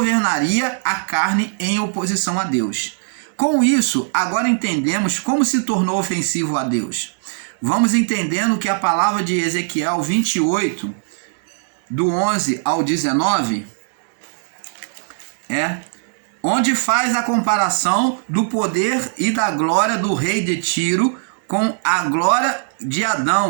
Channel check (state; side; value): silent; left; digital silence